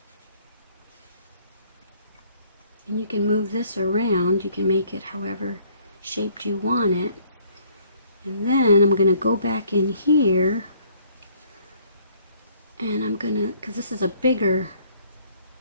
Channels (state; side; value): inverted; both; correlation -0.61